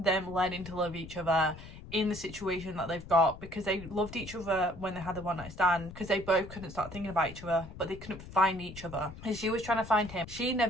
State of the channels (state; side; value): noise; left; rumble, 14 dB below the sound